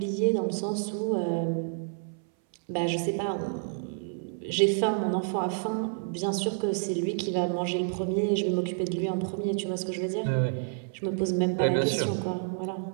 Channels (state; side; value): silent; left; 59 dB below the other